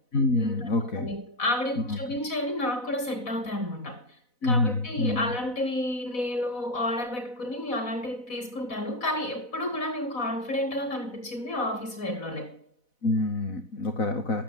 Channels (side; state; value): right; late; 4.0 ms